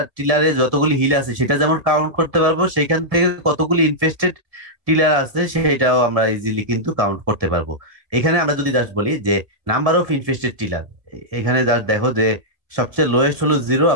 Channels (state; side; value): late; left; 1.8 ms